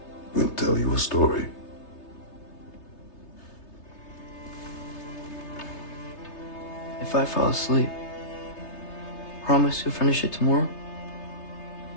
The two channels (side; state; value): right; late; 3.3 ms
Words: will tell you a story. If I fall asleep, promise you'll finish it tomorrow?